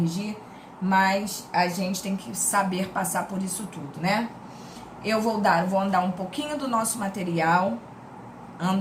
mas a gente tem que saber passar por isso tudo, né? Eu vou andar um pouquinho do nosso material,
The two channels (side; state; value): both; identical; correlation 1.00